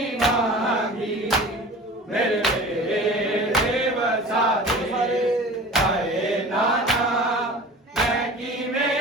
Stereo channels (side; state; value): both; normal; correlation 0.39